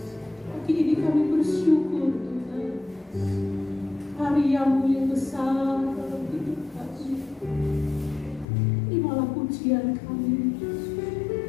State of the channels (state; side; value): drops out; right; at 8.5 s